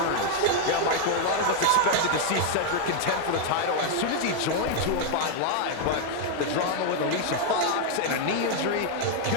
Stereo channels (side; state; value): both; different; correlation 0.00